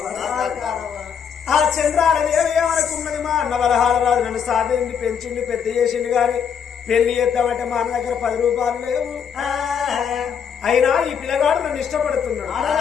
ఆ చంద్రాల దేవి ఏమనుకున్నది? మా అన్న వరహాల రాజు నన్ను సాధించి పెంచింది, పెద్ద చేసింది గాని పెళ్లి చేద్దామంటే మా అన్న దగ్గర 10 రూపాయలు లేవు. అయినా ఈ పిల్లగాడు నన్ను ఇష్టపడుతున్నాడు.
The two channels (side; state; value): right; quieter; 7.4 dB